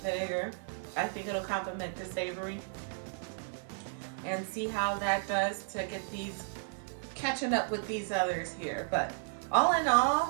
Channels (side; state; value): left; silent; 55 dB below the other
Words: vinegar. I think it'll complement the savory, and see how that does to get these catching up with these others here. But all in